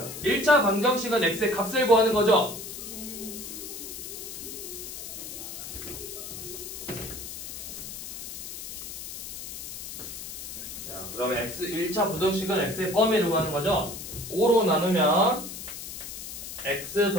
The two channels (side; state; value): left; noise; hiss, 9 dB below the sound